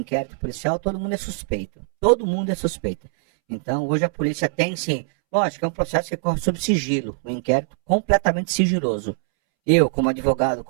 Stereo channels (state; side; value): silent; left; 64 dB below the other